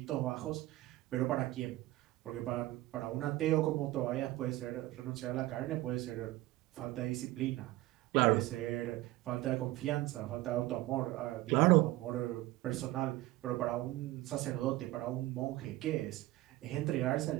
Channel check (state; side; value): quieter; left; 17.8 dB